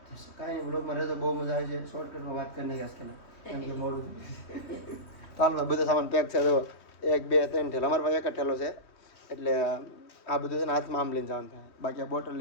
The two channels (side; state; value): right; late; 3.2 ms